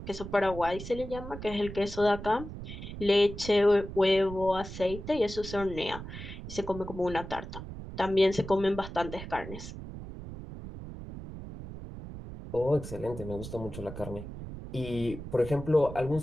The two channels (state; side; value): noise; right; rumble, 10 dB below the sound